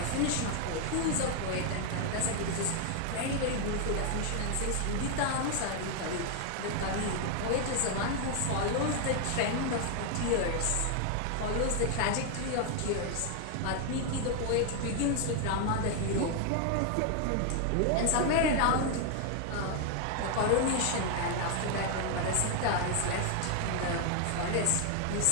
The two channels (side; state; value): both; different; correlation 0.00